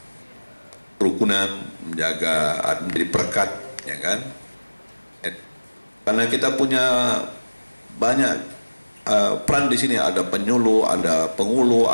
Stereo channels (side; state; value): both; inverted; correlation -1.00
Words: kerukunan, menjaga menjadi perekat, ya kan? Karena kita punya banyak peran di sini, ada penyuluh, ada pengulu,